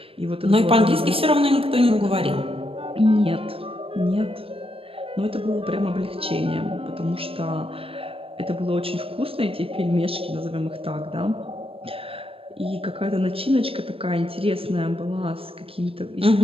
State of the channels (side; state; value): left; late; 0.27 ms